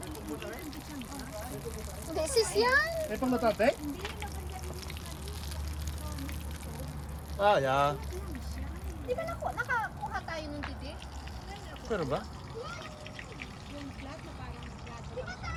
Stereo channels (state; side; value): identical; both; correlation 1.00